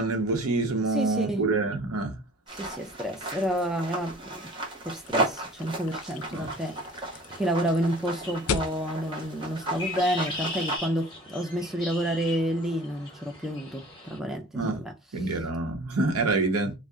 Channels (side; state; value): both; normal; correlation 0.45